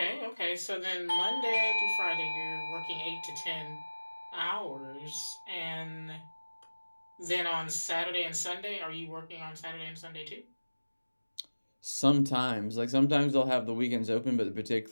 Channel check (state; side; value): inverted; both; correlation -1.00